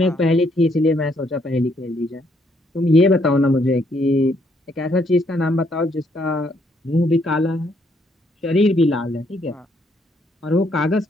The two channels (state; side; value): normal; both; correlation 0.71